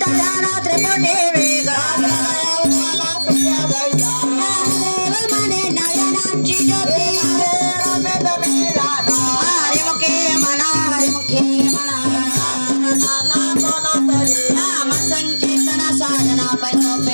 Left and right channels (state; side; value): inverted; both; correlation -1.00